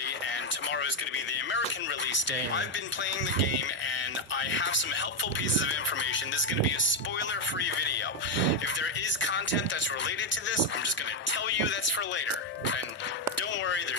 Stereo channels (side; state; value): both; normal; correlation 0.05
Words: and tomorrow is going to be the American release day. I've been playing the game, and I have some helpful pieces of information. This is going to be a spoiler-free video. If there is content that's related to this, I'm just going to tell you that's for later. And don't worry,